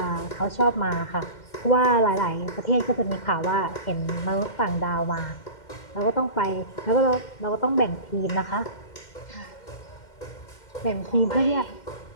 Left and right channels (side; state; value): right; late; 2.1 ms